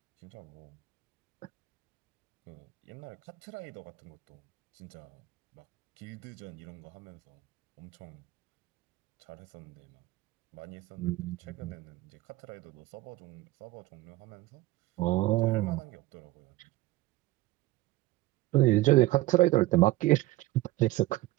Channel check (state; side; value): quieter; left; 18.0 dB